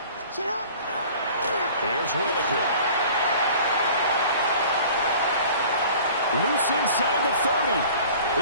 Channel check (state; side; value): inverted; both; correlation -0.46